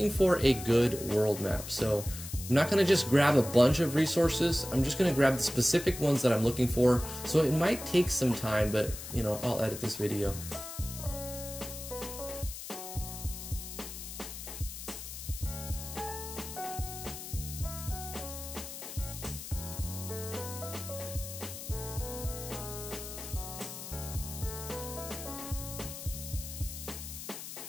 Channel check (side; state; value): left; noise; hiss, 10 dB below the sound